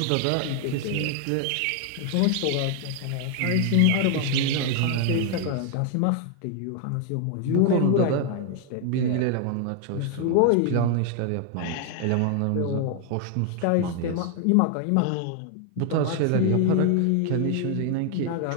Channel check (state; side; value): different; both; correlation 0.00